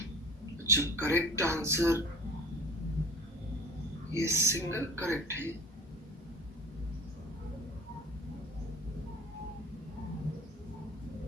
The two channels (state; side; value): normal; both; correlation 0.41